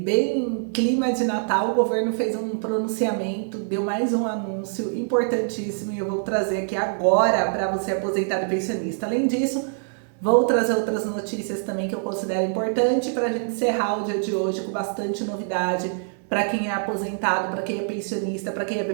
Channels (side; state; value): left; silent; digital silence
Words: bem em clima de Natal, o governo fez um pronunciamento, deu mais um anúncio importantíssimo e eu vou trazer aqui agora para você aposentado e pensionista. Além disso, vou trazer outras notícias também que eu considero importante para a gente encerrar o dia de hoje com bastante novidade para quem é aposentado, para quem é pensionista, para quem é